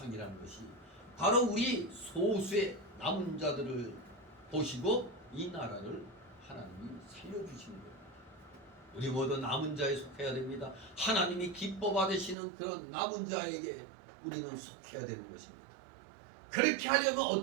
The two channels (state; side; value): drops out; left; at 12.4 s